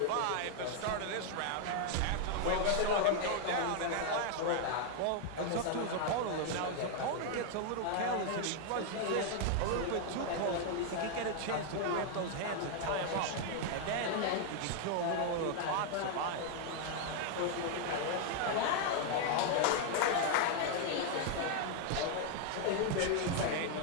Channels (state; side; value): different; both; correlation 0.00